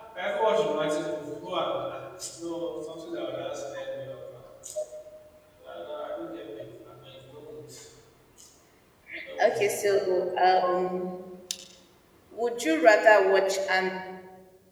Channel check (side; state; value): both; identical; correlation 1.00